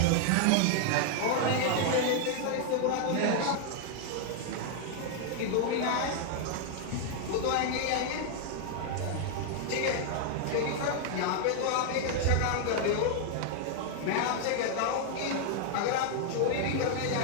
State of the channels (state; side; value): different; both; correlation 0.00